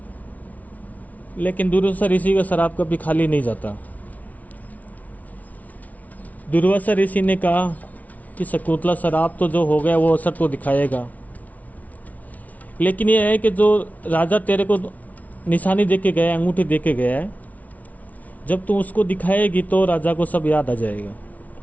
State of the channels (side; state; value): right; late; 0.072 ms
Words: लेकिन दुर्वासा ऋषि का श्राप कभी खाली नहीं जाता। दुर्वासा ऋषि ने कहा कि शकुंतला श्राप तो जो हो गया वो असर तो दिखाएगा, लेकिन ये है कि जो राजा तेरे को निशानी दे के गया, अंगूठी दे के गया है, जब तू उसको दिखाएगी तो राजा को सब याद आ जाएगा।